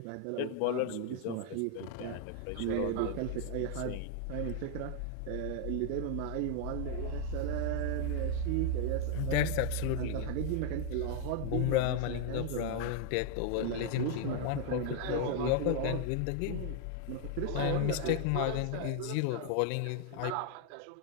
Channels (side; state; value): both; different; correlation 0.00